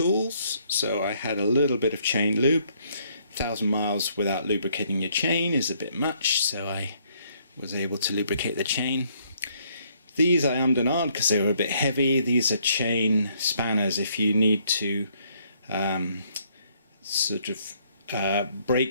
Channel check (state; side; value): inverted; both; correlation -0.67